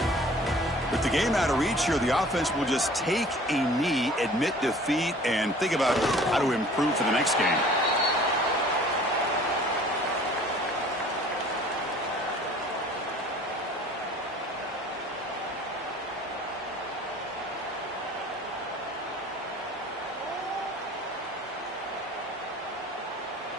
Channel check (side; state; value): both; normal; correlation 0.49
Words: With the game out of reach here, the offense will just take a knee, admit defeat, and think about how to improve for the next game.